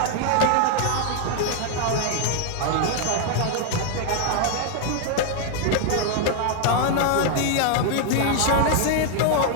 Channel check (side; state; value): both; different; correlation 0.00